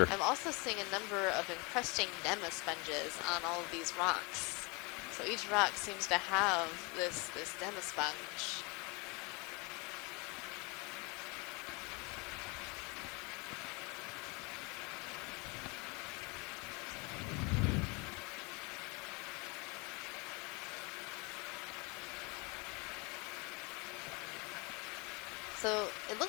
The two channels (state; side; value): quieter; right; 28.8 dB